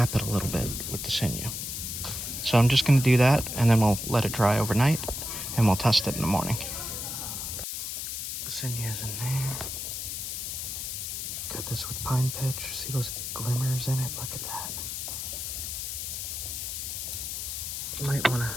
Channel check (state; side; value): noise; left; hiss, 5 dB below the sound